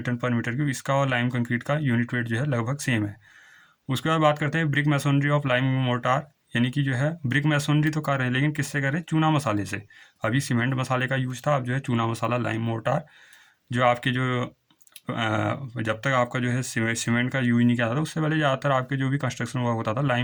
पर मीटर क्यूब इसका और लाइम कंक्रीट का यूनिट वेट जो है लगभग सेम है। उसके बाद बात करते हैं brick masonry of lime mortar, यानी कि जो है ब्रिक मैसनरी तो कर रहे हैं लेकिन किससे कर रहे हैं, चूना मसाले से। अभी सीमेंट मसाले का यूज था, अब जो है चूना मसाला लाइम मोर्टार, जो आपके जो जब तक आपका जो है सीमेंट का यूज नहीं किया था उससे पहले ज़्यादातर आपके जो भी कंस्ट्रक्शन वर्क होता था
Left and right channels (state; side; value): identical; both; correlation 1.00